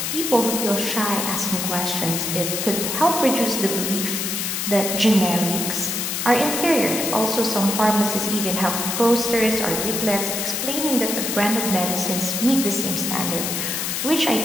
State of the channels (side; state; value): left; noise; hiss, 1 dB below the sound